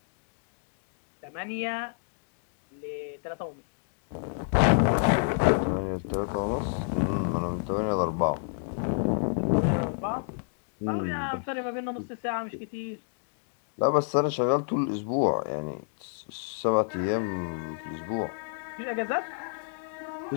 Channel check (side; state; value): right; silent; digital silence